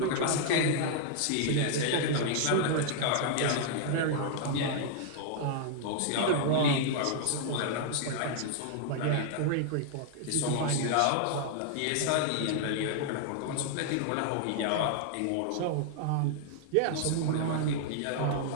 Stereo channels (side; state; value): both; different; correlation 0.00